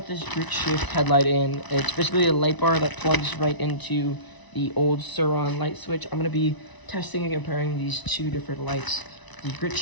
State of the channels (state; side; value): late; right; 1.0 ms